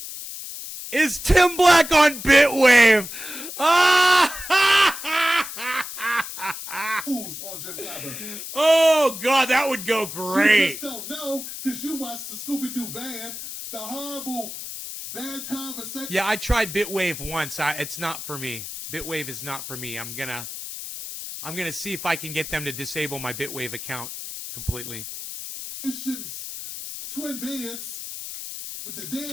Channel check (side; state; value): left; noise; hiss, 9 dB below the sound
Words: is Tim Black on Bitwave? On Jim Clyburn. Oh, God, that would go You great. just don't know because you watched the Scooby-Doo van, the horrible, bad conversation. Yeah, I tried Bitwave once. It's not for me. Bitwave is not for me. I'm gonna see if I can get them to disable my Bitwave account completely. Twin beds with the